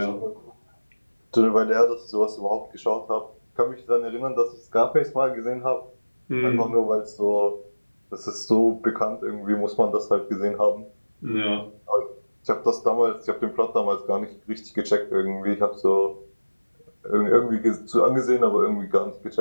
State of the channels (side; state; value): both; inverted; correlation -1.00